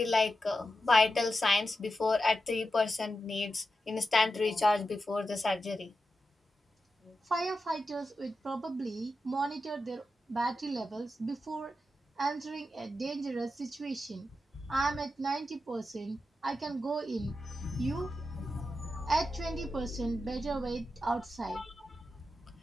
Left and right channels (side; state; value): both; normal; correlation 0.89